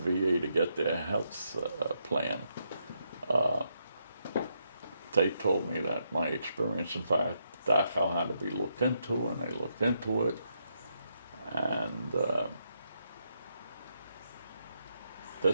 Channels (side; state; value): both; inverted; correlation -0.80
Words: to get their health plan, they told me that my experience in Dachau had to be looked into, and they looked into it. And